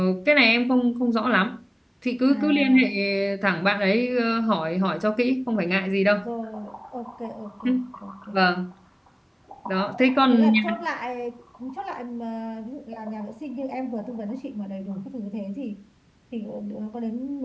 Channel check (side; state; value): both; identical; correlation 1.00